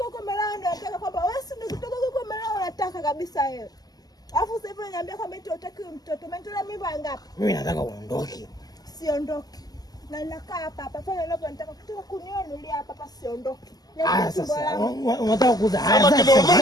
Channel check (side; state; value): right; late; 0.18 ms